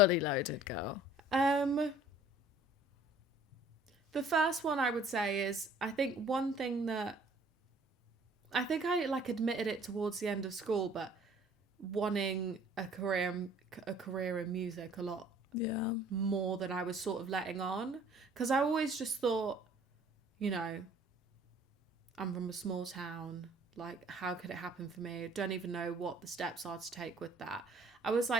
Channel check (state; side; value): normal; both; correlation 0.54